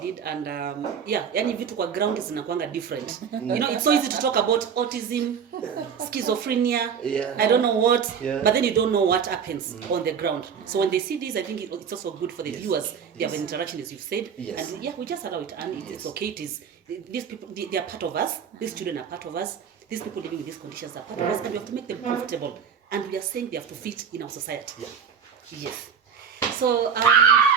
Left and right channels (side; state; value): left; quieter; 7.1 dB